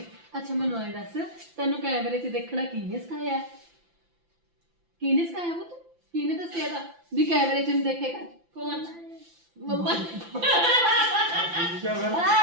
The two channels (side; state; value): left; late; 5.9 ms